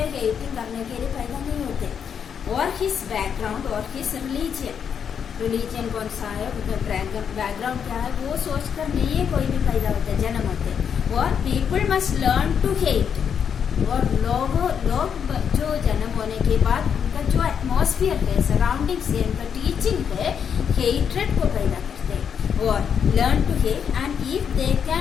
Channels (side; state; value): right; quieter; 7.5 dB